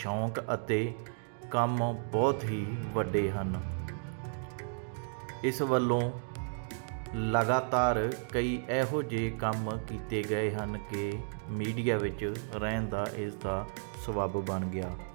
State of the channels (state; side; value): silent; left; digital silence